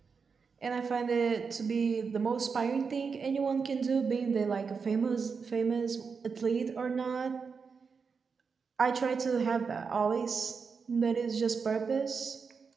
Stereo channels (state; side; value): quieter; left; 5.4 dB